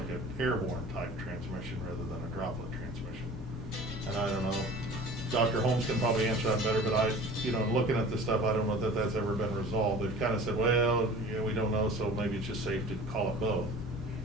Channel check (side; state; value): both; normal; correlation 0.42